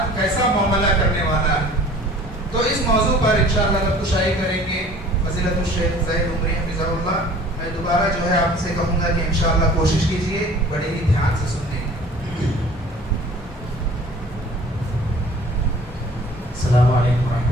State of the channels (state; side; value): normal; both; correlation 0.48